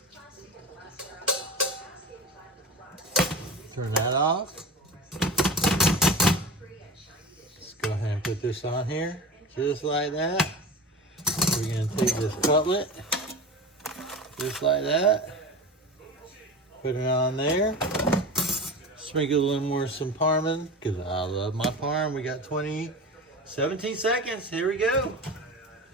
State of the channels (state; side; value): normal; both; correlation 0.31